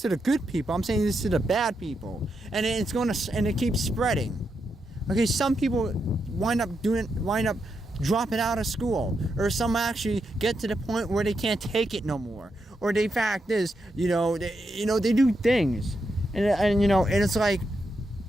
to the good people. I'm saying this to the bad people. And it keeps spreading. Okay, some people wind up dropping out of school, or some actually get to the point where they can't take it no more. Or the fact is, they do things. And it's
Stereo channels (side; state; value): both; normal; correlation 0.83